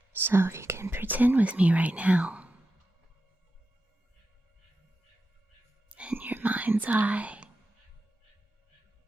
So if you can pretend with me right now, in your mind's eye,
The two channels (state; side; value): normal; both; correlation 0.90